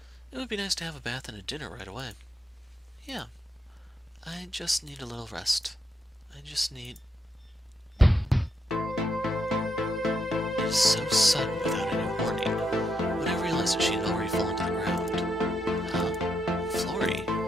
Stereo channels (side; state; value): both; normal; correlation 0.80